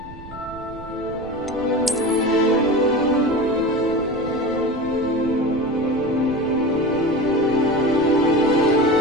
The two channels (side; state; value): right; noise; rumble, 16 dB below the sound